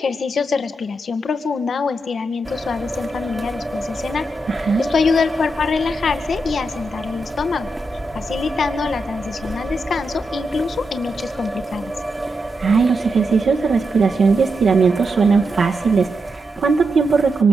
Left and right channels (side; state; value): both; normal; correlation 0.85